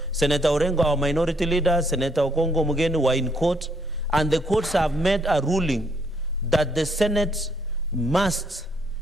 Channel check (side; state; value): both; normal; correlation 0.70